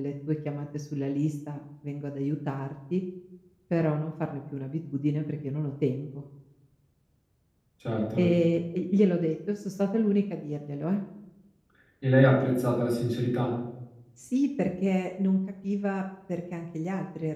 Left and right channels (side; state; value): both; identical; correlation 1.00